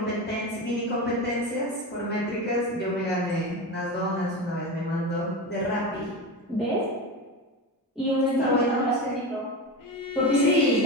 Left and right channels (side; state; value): both; normal; correlation 0.22